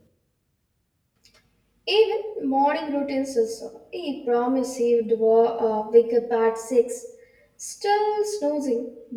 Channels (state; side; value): identical; both; correlation 1.00